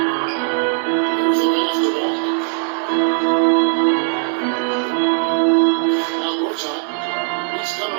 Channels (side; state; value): left; silent; 56 dB below the other